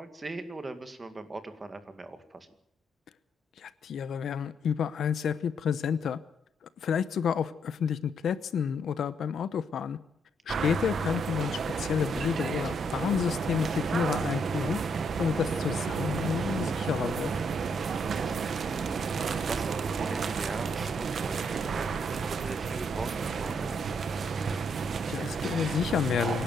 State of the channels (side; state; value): both; normal; correlation 0.74